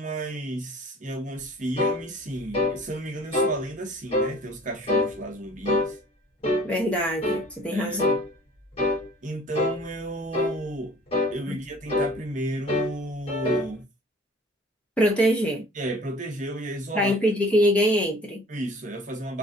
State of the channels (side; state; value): both; normal; correlation 0.49